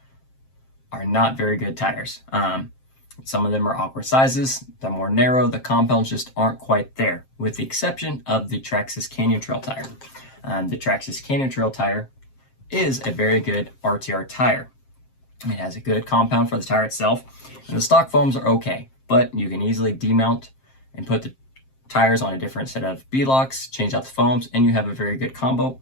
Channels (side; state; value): right; late; 7.6 ms